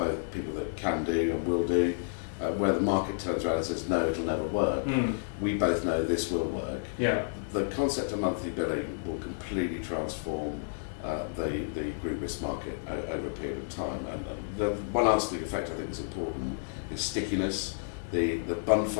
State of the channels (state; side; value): silent; right; digital silence